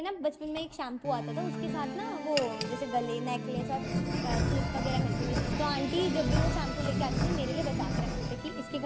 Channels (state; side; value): identical; both; correlation 1.00